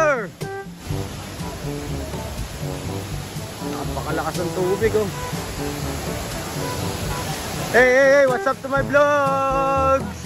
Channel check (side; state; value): both; identical; correlation 1.00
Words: napakalakas ng tubig oh. Hey, what's up to my vlogs?